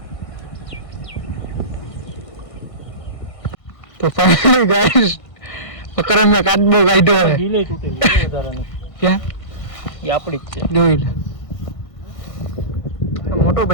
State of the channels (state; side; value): late; right; 1.6 ms